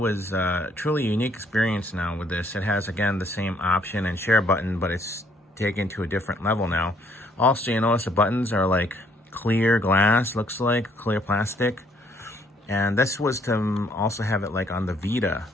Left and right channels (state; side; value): normal; both; correlation 0.66